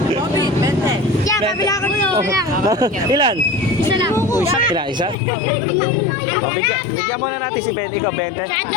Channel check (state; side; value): drops out; right; at 5.2 s